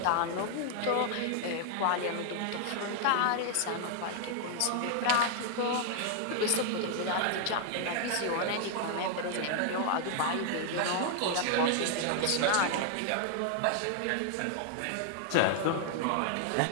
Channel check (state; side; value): different; both; correlation 0.00